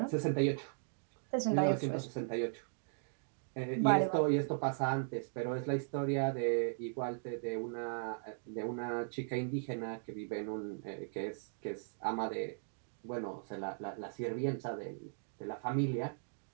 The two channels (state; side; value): silent; left; digital silence